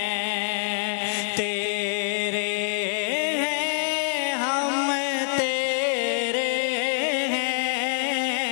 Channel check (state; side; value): silent; right; digital silence